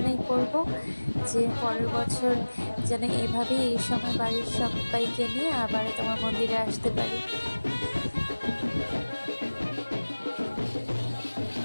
করব যে পরের বছর যেন এভাবেই এই সময় বাড়ির সবাইকে নিয়ে আবার তোমার মন্দিরে আসতে পারি।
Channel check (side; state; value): both; inverted; correlation -1.00